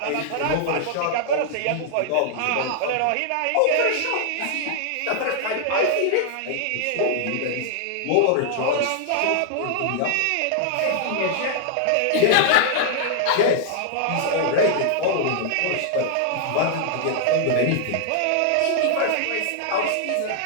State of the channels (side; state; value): both; different; correlation 0.00